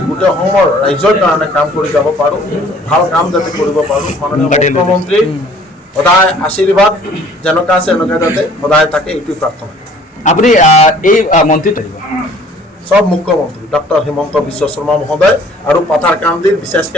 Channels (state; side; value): normal; both; correlation 0.54